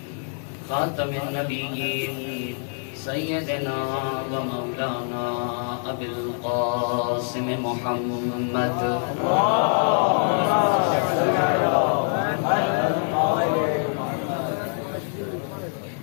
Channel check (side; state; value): right; silent; 62 dB below the other